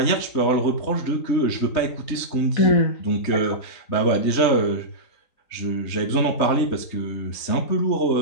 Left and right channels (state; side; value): late; right; 3.3 ms